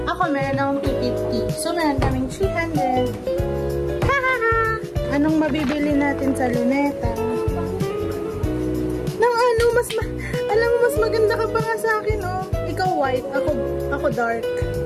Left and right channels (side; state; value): both; identical; correlation 1.00